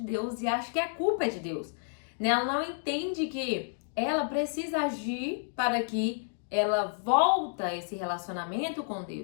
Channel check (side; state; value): right; silent; digital silence